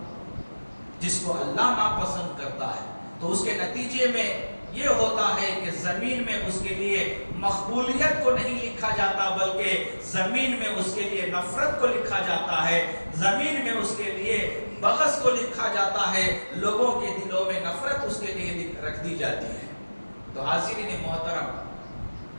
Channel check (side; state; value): both; inverted; correlation -1.00